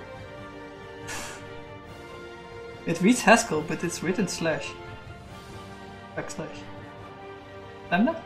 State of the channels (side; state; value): both; identical; correlation 1.00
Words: It reads Haskell, but it's written slash. Backslash. Lambda?